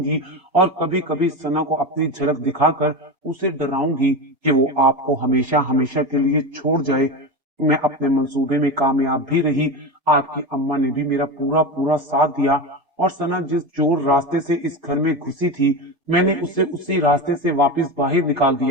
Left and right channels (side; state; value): left; late; 2.3 ms